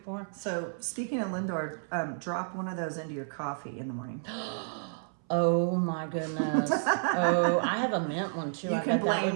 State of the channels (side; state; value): left; silent; 57 dB below the other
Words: So speaking of Lindor, drop one of those into your coffee in the morning. Oh my goodness. Oh, I have a mint one too. You I can bet that blame would